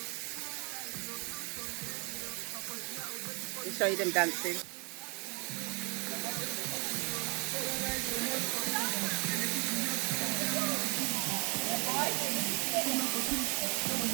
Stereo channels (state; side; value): quieter; left; 32.9 dB